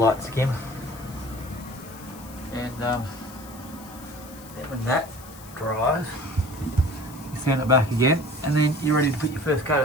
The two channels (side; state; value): left; noise; hiss, 19 dB below the sound